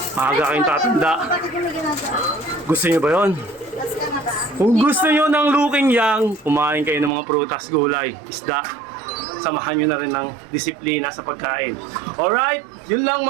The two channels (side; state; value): left; drops out; at 7.1 s